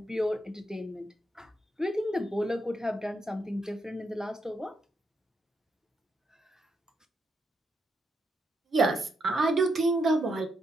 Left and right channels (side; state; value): both; normal; correlation 0.80